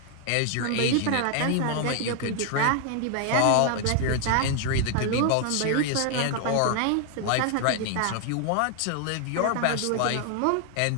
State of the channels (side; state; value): both; different; correlation 0.00